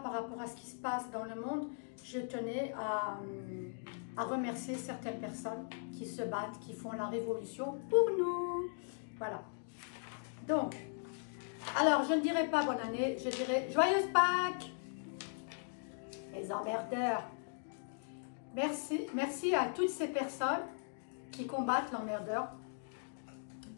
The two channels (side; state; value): right; silent; digital silence